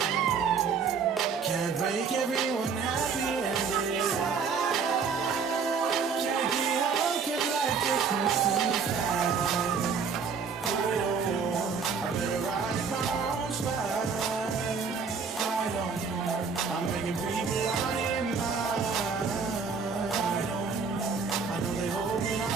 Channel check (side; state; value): left; quieter; 5.6 dB